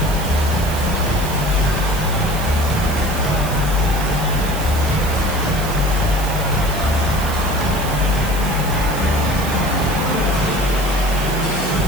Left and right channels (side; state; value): right; noise; hiss, 11 dB below the sound